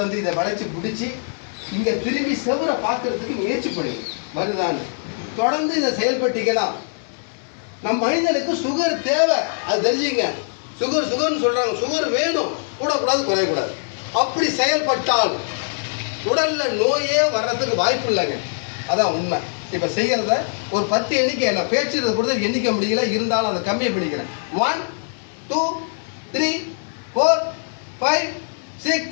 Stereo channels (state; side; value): silent; right; 64 dB below the other